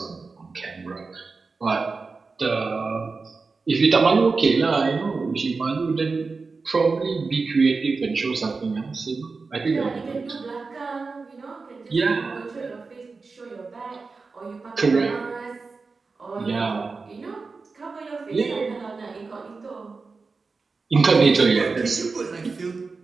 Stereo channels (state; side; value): quieter; left; 4.3 dB